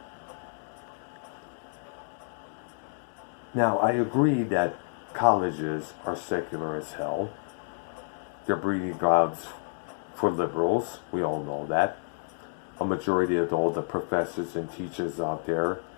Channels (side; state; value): right; silent; digital silence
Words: Now, I agree that colleges are secular as hell. They're breeding grounds for liberals. We all know that. A majority of all the professors and teachers out there